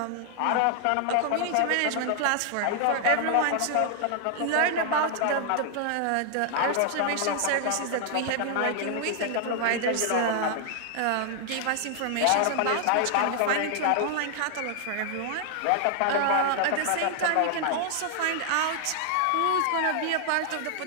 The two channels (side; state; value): both; different; correlation 0.00